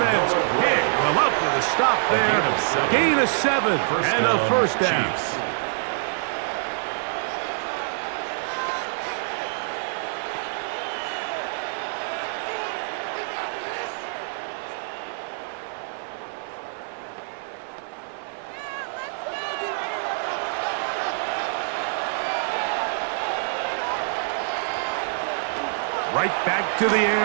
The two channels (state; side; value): silent; left; 55 dB below the other